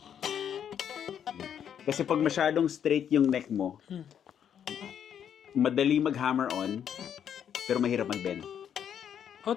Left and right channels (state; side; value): quieter; right; 8.9 dB